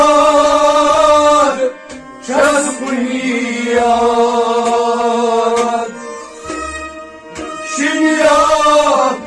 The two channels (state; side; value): identical; both; correlation 1.00